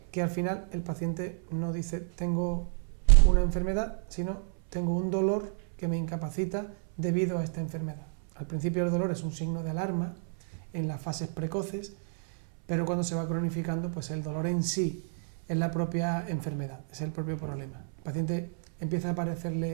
que al final el paciente no dice tengo una enfermedad, sino tengo un dolor que me incapacita debido a esta enfermedad. Al principio el dolor es un signo de alarma en las fases precoces, pero cuando se va cronificando, pues el dolor en sí es la propia enfermedad, es el propio problema. El paciente empieza a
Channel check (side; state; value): left; silent; 58 dB below the other